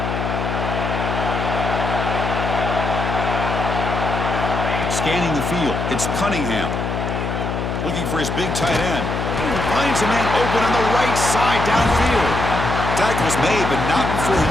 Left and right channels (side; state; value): left; noise; hum, 2 dB below the sound